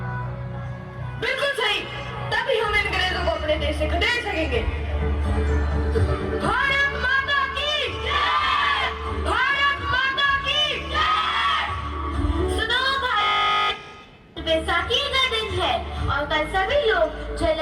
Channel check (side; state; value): both; identical; correlation 1.00